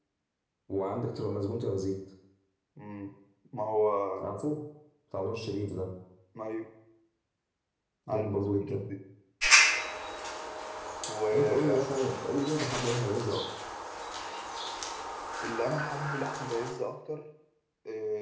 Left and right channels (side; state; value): both; identical; correlation 1.00